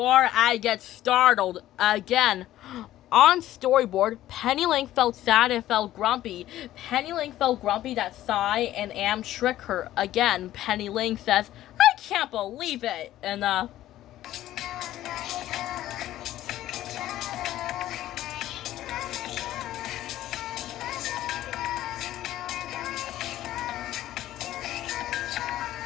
I get startled again. On storyboard, Penny Link felt sad and felt grumpy. Penny Link felt grumpy that Sai and Am trick her again. Penny Link says, I can't believe it. And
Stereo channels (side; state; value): right; quieter; 13.9 dB